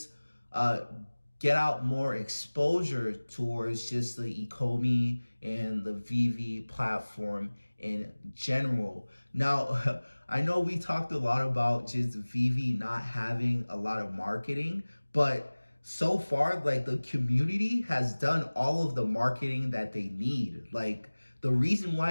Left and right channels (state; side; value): inverted; both; correlation -1.00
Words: get out more exposure towards just the Ecomi and the Veve platform in general. Now, I know we talked a lot about just Veve not having a lot of marketing, but so far, like the community has done all of the marketing that they need. Like, the reason